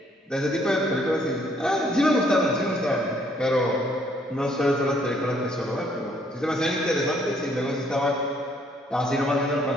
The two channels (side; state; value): both; normal; correlation 0.66